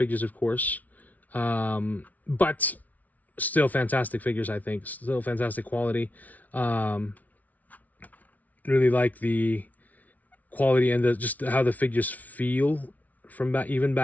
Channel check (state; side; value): late; right; 0.074 ms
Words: of course. But still fantastic figures, I think. Still fantastic quality. Really like the quality and just how the figures feel from even